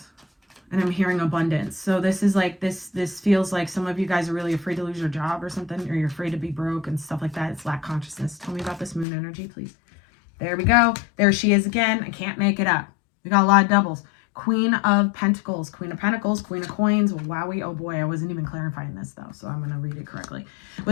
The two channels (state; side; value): drops out; right; at 9.1 s